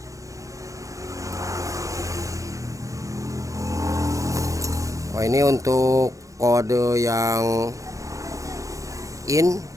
Oh ini untuk kode yang in.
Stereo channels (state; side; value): late; left; 0.16 ms